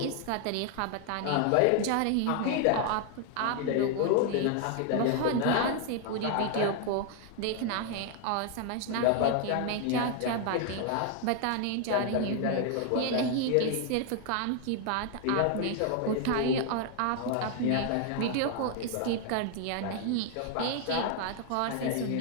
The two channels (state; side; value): different; both; correlation 0.00